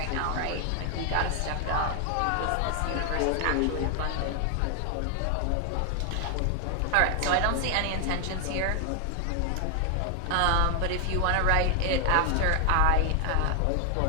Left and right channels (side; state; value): both; different; correlation 0.00